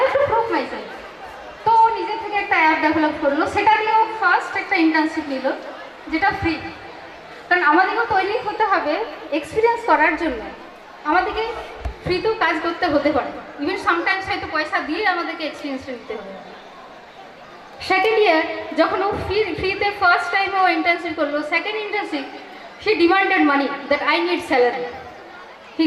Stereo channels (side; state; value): both; identical; correlation 1.00